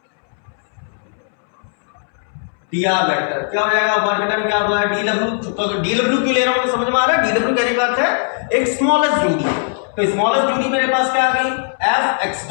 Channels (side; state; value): right; silent; 66 dB below the other